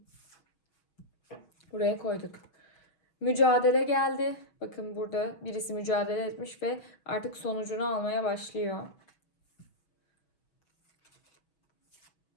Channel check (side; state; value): right; late; 6.5 ms